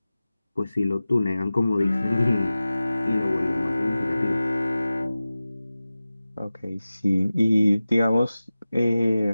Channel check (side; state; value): both; inverted; correlation -0.96